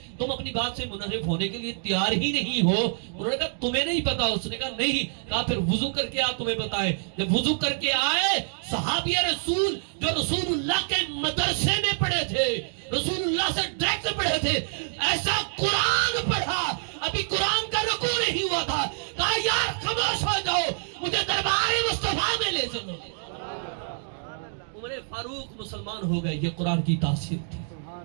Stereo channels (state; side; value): silent; left; digital silence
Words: تم اپنی بات سے منحرف ہونے کے لیے تیار ہی نہیں ہو؟ انہوں نے کہا تمہیں نہیں پتا؟ اس نے کہا نہیں۔ کہا پھر وضو کر کے آ، تمہیں پتا ہے۔ جب وضو کر کے آئے، صحابی رسول جو رسول اللہ کے مدرسے میں پڑھے تھے، رسول اللہ سے ڈائریکٹ پڑھے تھے، ایسا قرآن پڑھا، ابھی قرآن کا رکوع نہیں ہوا تھا۔ کہا یار خاموش ہو جاؤ، مجھے دربار مصطفیٰ میں لے چلو۔ عمر فاروق مسلمان ہو گئے، یہ قرآن کی تاثیر تھی،